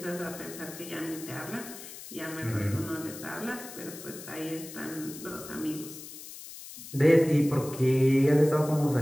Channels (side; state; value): left; noise; hiss, 13 dB below the sound